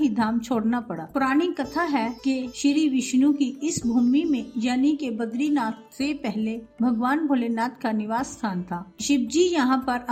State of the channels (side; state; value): both; identical; correlation 1.00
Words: धाम छोड़ना पड़ा। पुरानी कथा है कि श्री विष्णु की इस भूमि में यानी कि बद्रीनाथ से पहले भगवान भोलेनाथ का निवास स्थान था। शिव जी यहाँ पर